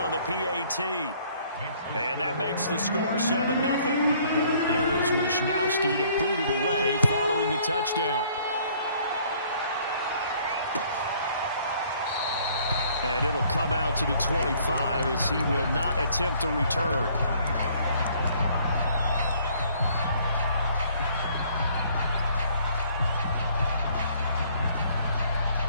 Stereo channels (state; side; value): inverted; both; correlation -0.61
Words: the PAT. And that makes the score 7-0. Here is Wishnowski to boot it away following the touchdown. And it'll come out to the 25 as he will not attempt to return.